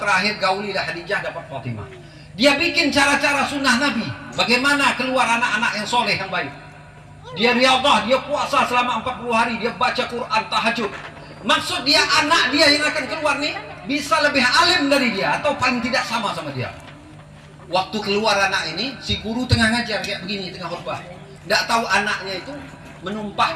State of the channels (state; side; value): identical; both; correlation 1.00